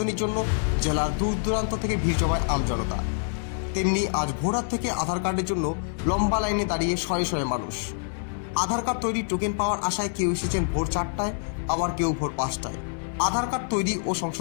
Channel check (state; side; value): silent; right; digital silence